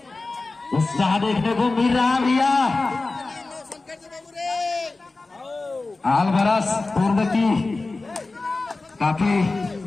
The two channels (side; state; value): right; quieter; 3.5 dB